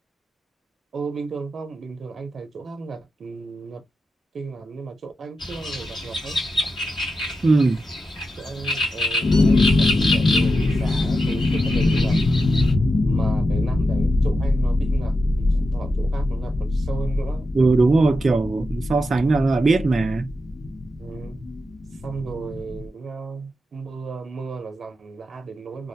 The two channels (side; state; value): both; normal; correlation 0.89